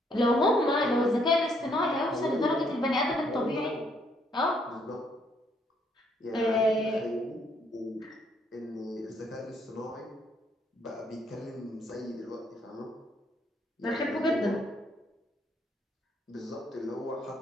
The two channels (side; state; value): both; normal; correlation 0.70